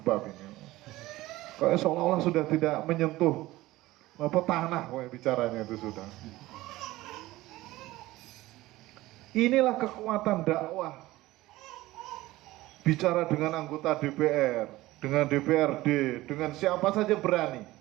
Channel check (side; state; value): left; quieter; 17.9 dB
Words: ini. Kayak seolah-olah sudah tidak menyentuh tanah kayak bicaranya itu sudah. Inilah kekuatan dakwah. Bicara dengan anggota DPR, dengan DPRD, dengan siapa saja berani.